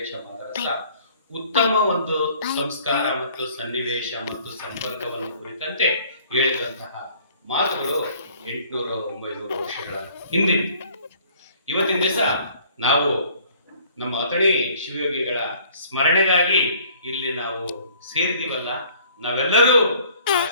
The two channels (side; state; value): both; inverted; correlation -0.56